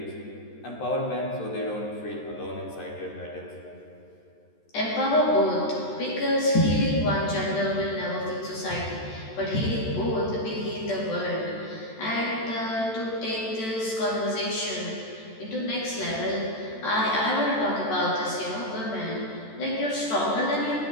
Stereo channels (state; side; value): late; right; 13 ms